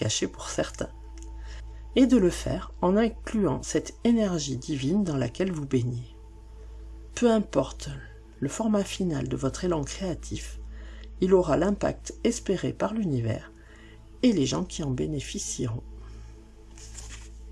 pour certains. Et de le faire en incluant cette énergie divine dans laquelle vous baignez. Peu importe le format final de votre élan créatif, il aura l'impact espéré par l'univers et les gens qui en bénéficieront.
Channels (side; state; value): both; identical; correlation 1.00